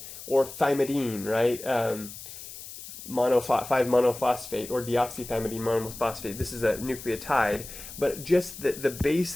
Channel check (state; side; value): noise; left; hiss, 13 dB below the sound